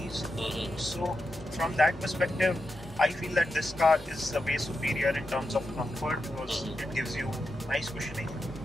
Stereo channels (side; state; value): both; normal; correlation 0.87